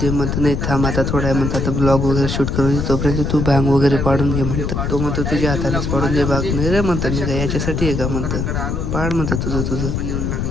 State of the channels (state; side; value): noise; left; rumble, 1 dB below the sound